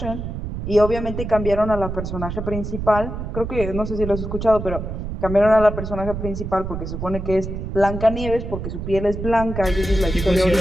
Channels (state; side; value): noise; right; rumble, 6 dB below the sound